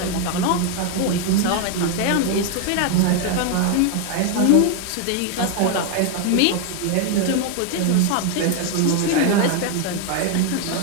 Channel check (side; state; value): both; different; correlation 0.01